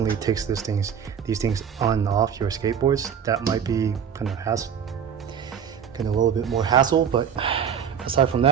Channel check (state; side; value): quieter; left; 7.9 dB